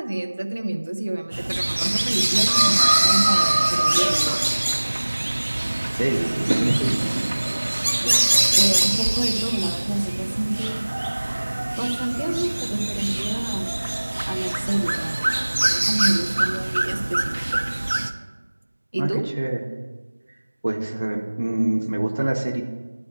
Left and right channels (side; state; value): both; inverted; correlation -1.00